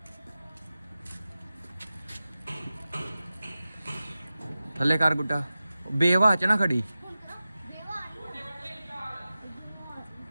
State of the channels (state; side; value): inverted; both; correlation -0.95